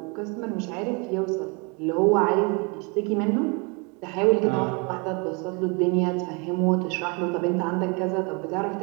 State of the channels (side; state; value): left; quieter; 31.3 dB